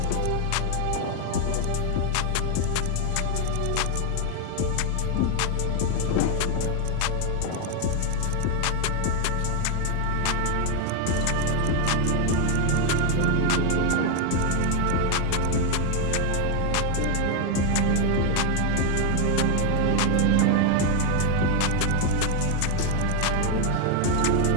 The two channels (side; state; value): both; different; correlation 0.01